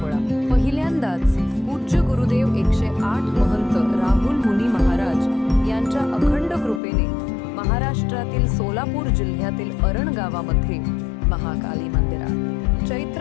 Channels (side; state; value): right; drops out; at 6.8 s